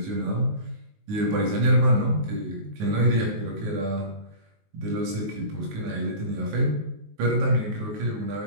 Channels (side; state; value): left; late; 19 ms